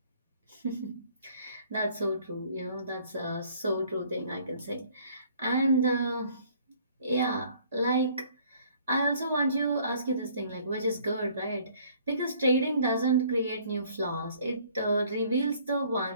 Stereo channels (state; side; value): inverted; both; correlation -0.58